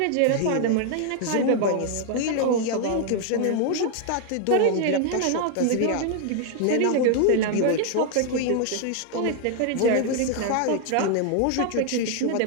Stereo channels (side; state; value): both; different; correlation 0.00